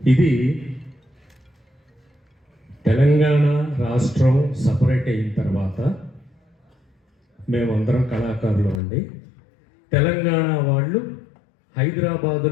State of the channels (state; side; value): drops out; right; at 8.8 s